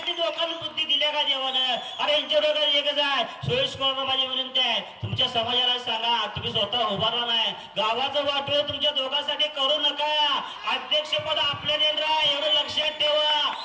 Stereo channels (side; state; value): both; identical; correlation 1.00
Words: डोक्याला बुद्धी दिल्या का देवानं? अरे यांच्या डोक्यात एकच आहे, सोयीस्कर माझी विनंती आहे, तुमच्या समाजाला सांगा, तुम्ही स्वतः उभारला नाही, गावाचं वाटोळ तुमच्या दोघांसाठी करू नका. अध्यक्षपद आपल्या देणार एवढं लक्षात ठेवा.